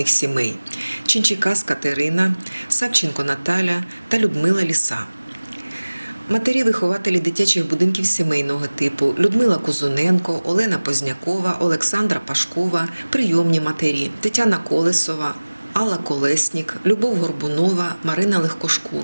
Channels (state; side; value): inverted; both; correlation -1.00